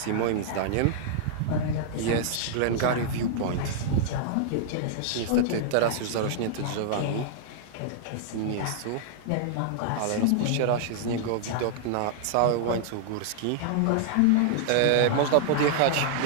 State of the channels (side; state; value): both; different; correlation -0.01